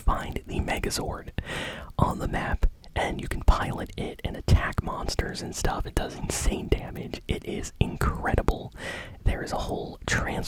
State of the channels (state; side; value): identical; both; correlation 1.00